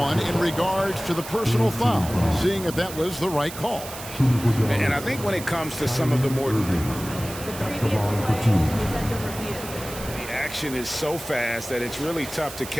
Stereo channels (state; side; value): noise; right; hiss, 12 dB below the sound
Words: in regards to the personal foul. Seeing if that was the right call. And I think when it comes to some of the more... The action is so fast that it's really tough to